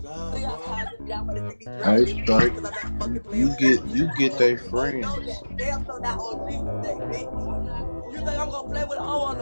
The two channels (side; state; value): both; inverted; correlation -1.00